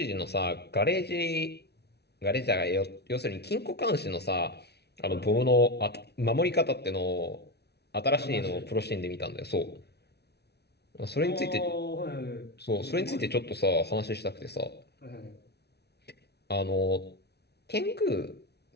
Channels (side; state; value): right; late; 0.48 ms